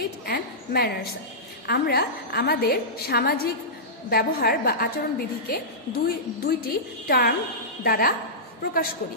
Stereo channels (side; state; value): both; normal; correlation -0.16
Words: and manners. আমরা আমাদের সামাজিক ব্যবহার বা আচরণবিধিকে দুইটি টার্ম দ্বারা প্রকাশ করি।